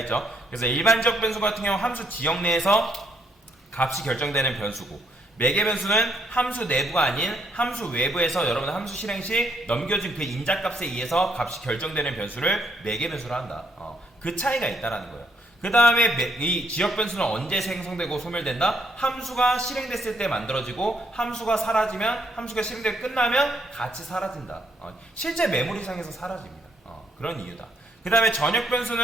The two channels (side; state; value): both; normal; correlation 0.72